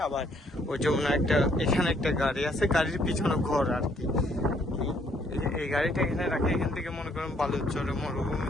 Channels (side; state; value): both; normal; correlation 0.67